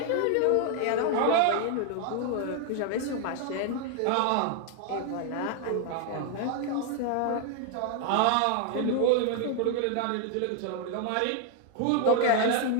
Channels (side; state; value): both; different; correlation 0.00